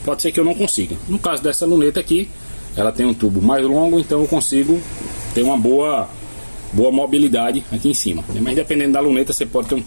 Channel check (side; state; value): both; inverted; correlation -1.00